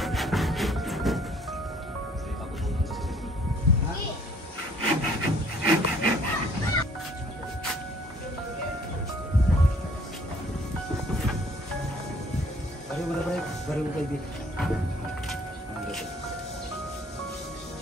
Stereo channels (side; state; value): both; normal; correlation 0.58